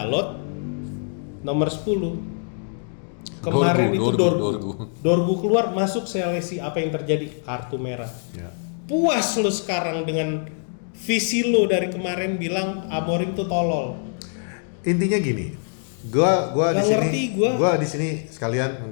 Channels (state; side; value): silent; right; 63 dB below the other